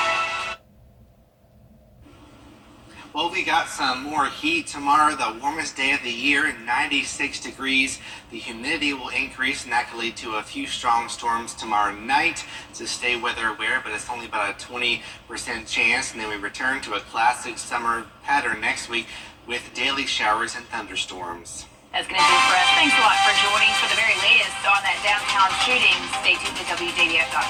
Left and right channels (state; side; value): identical; both; correlation 1.00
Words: Well, we got some more heat tomorrow, the warmest day of the year, 96 degrees. The humidity will increase, and that could lead to a few strong storms tomorrow night. So stay weather aware, but it's only about a 20% chance. And then we return to a classic summer pattern next week with daily showers and thunderstorms. That's going to do it for us. Thanks a lot for joining for the very latest on that downtown shooting. Stay tuned to